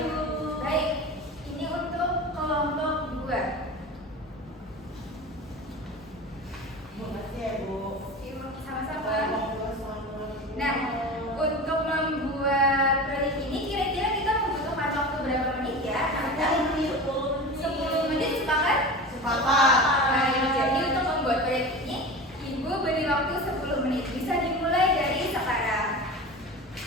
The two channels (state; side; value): normal; both; correlation 0.31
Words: Baik, ini untuk kelompok 2. Makasih ya, Bu. Sama-sama. Nah, untuk membuat proyek ini kira-kira kita membutuhkan waktu berapa menit ya? 10 menit, sepakat? Baik, jadi untuk membuat proyek ini, Ibu beri waktu 10 menit. Bisa dimulai dari sekarang.